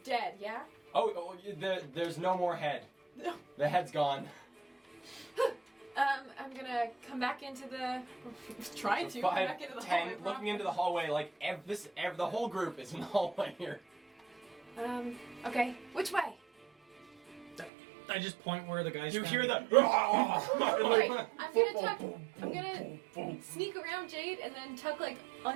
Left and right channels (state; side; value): drops out; left; at 17.7 s